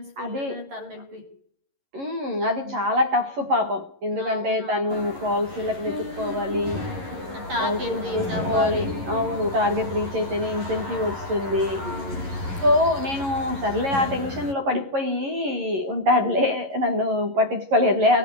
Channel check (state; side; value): late; left; 11 ms